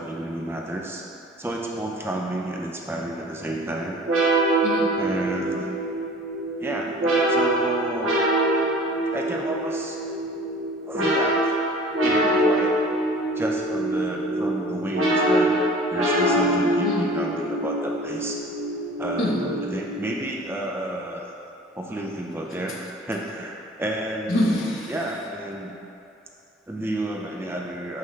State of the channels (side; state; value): both; normal; correlation 0.45